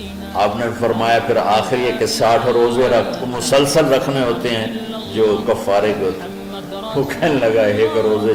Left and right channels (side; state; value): both; identical; correlation 1.00